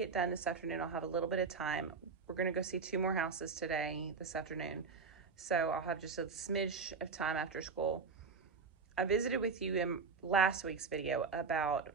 done this afternoon, I'll have a little bit of time. We're gonna go see 2 more houses this afternoon. So I'll have just a smidge of time after school. I visited with you in last week's video about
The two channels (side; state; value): left; quieter; 5.0 dB